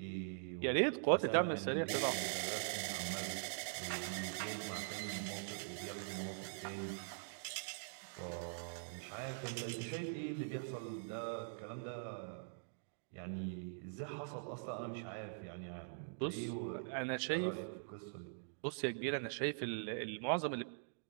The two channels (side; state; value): left; silent; digital silence